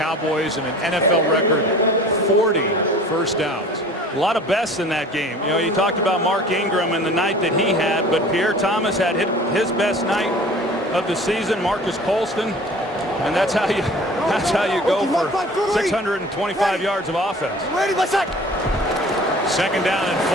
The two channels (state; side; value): normal; both; correlation 0.45